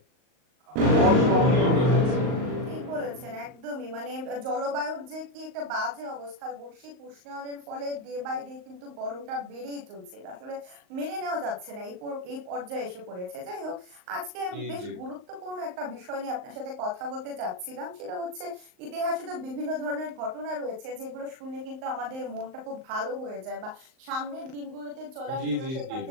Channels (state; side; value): late; left; 38 ms